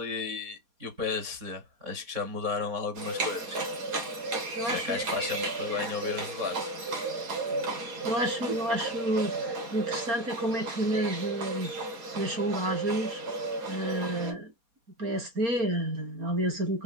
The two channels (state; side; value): late; left; 4.2 ms